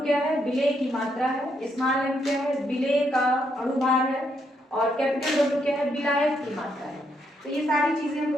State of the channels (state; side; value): normal; both; correlation 0.76